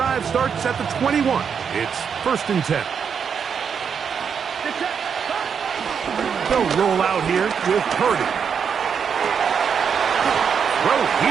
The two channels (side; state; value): left; quieter; 6.9 dB